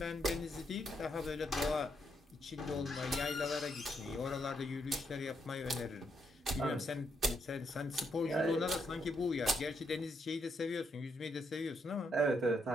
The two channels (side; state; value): both; normal; correlation 0.77